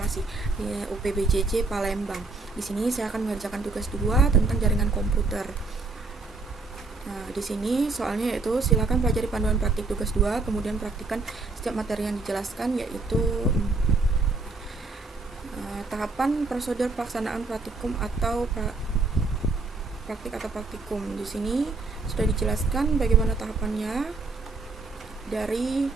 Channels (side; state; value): left; quieter; 3.7 dB